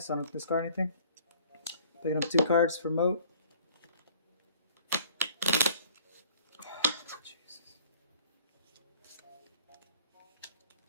I don't have to discard anything. Picking up 2 cards for moat. Jesus.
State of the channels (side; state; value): both; inverted; correlation -0.54